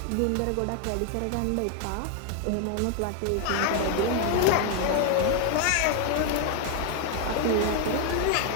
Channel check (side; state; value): both; different; correlation 0.00